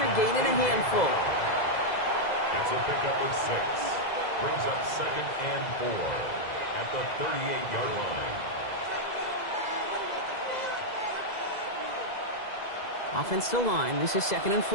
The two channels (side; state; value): right; late; 2.0 ms